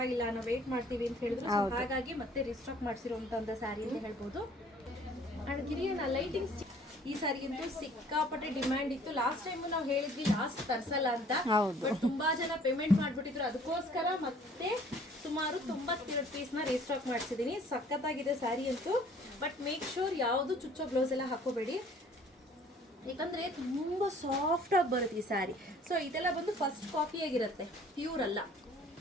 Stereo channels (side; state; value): both; normal; correlation 0.55